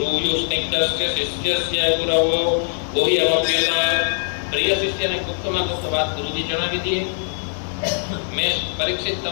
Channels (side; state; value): right; silent; digital silence